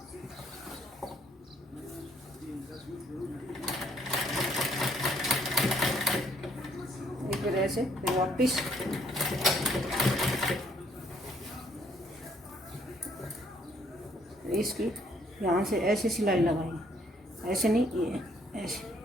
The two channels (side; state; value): both; normal; correlation 0.66